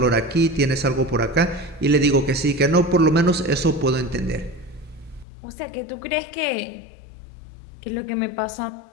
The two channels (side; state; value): right; drops out; at 5.2 s